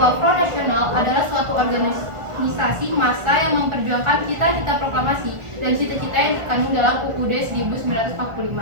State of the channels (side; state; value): left; late; 1.4 ms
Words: Front Nasional adalah suatu organisasi massa yang memperjuangkan cita-cita proklamasi dan cita-cita yang terkandung dalam UUD 1945.